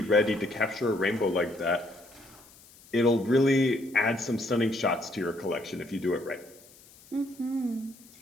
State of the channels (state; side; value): noise; left; hiss, 24 dB below the sound